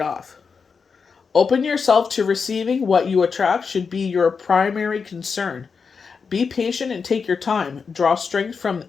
off. Open yourself to receiving. What you attract should be your primary concern. Be patient and take your time. Draw strength from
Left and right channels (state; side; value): quieter; right; 5.5 dB